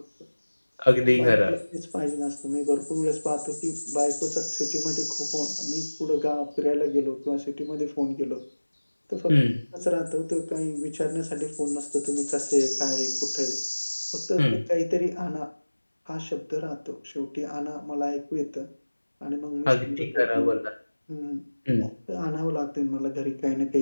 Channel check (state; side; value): inverted; both; correlation -1.00